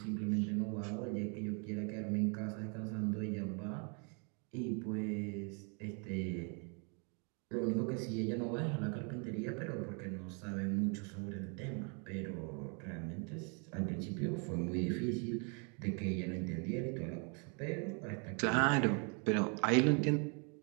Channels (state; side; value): quieter; left; 37.1 dB